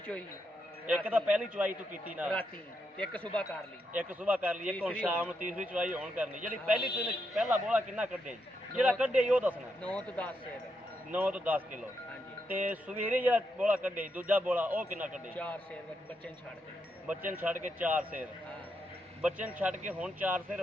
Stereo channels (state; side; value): normal; both; correlation 0.82